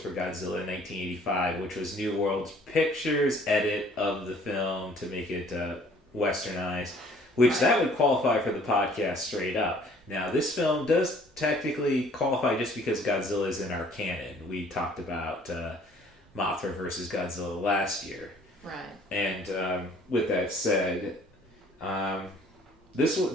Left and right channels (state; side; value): normal; both; correlation 0.56